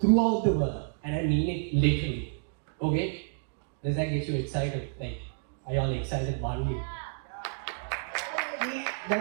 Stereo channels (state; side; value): silent; left; digital silence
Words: the world, and I mean it literally, okay? Does that get you excited? Like, are y'all excited, Banu?